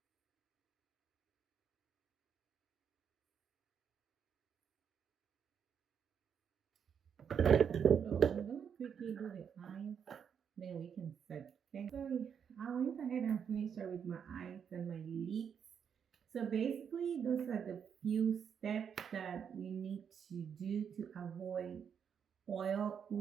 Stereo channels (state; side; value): quieter; left; 7.5 dB